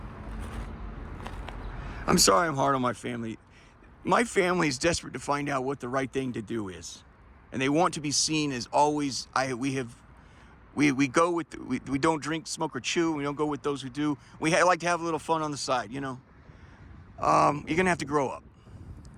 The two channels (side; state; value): both; identical; correlation 1.00